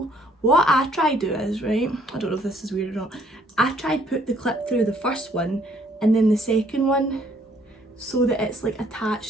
What I try to do is, right, I don't know if this is weird or not, I try to put the clip through the first one and then the second one, so that it's like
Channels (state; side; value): normal; both; correlation 0.64